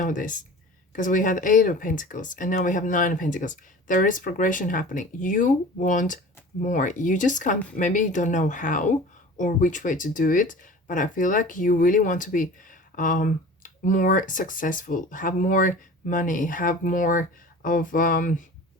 this? Because we had 8 of Pentacles and now we have 9 of Pentacles. There is progression happening. You want more. You just can't, maybe you don't know how or which way to do it, but I feel like you really want to be more successful, have more money, have more of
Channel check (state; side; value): normal; both; correlation 0.39